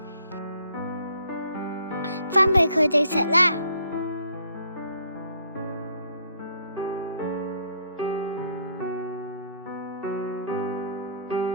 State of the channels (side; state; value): both; inverted; correlation -0.64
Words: 分俾佢哋食啦。